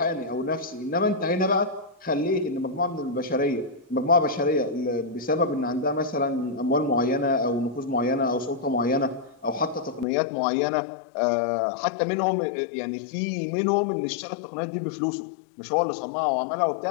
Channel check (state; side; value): drops out; right; at 10.1 s